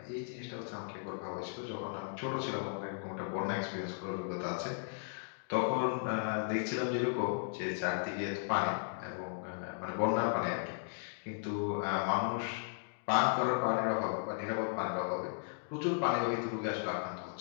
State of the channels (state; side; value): silent; right; digital silence